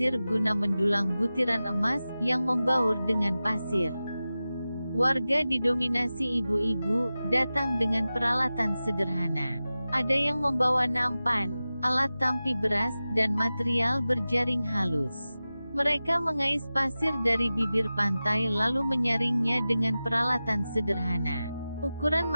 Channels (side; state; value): both; inverted; correlation -0.95